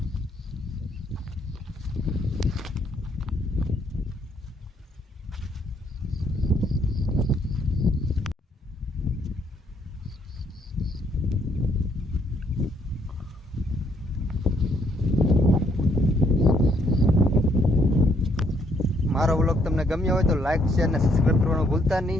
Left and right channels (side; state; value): both; normal; correlation 0.70